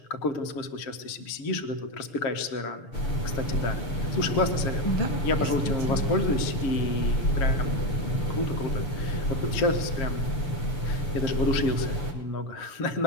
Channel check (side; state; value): right; late; 6.8 ms